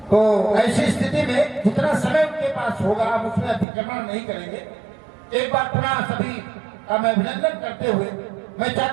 तो ऐसी स्थिति में जितना समय उनके पास होगा हम उसमें अतिक्रमण नहीं करेंगे। एक बार पुनः सभी का मैं अभिनंदन करते हुए मैं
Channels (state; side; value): drops out; left; at 3.7 s